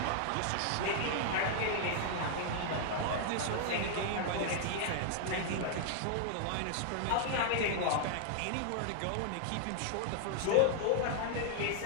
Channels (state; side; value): different; both; correlation 0.00